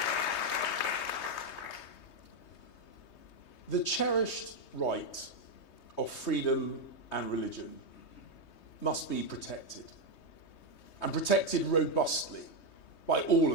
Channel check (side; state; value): right; late; 3.2 ms